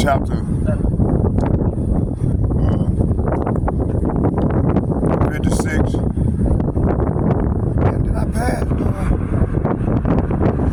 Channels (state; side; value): identical; both; correlation 1.00